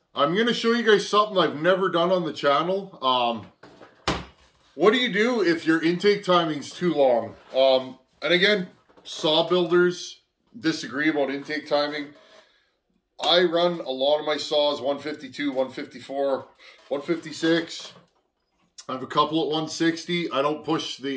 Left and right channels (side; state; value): both; identical; correlation 1.00